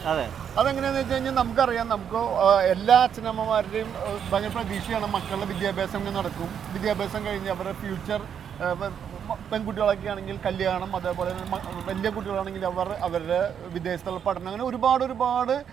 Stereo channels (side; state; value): left; quieter; 8.2 dB